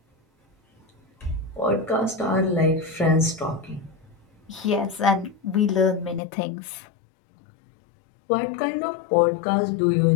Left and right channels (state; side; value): drops out; right; at 6.2 s